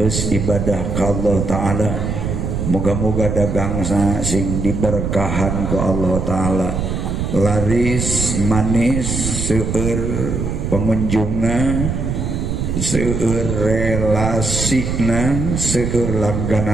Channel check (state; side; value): noise; right; rumble, 2 dB below the sound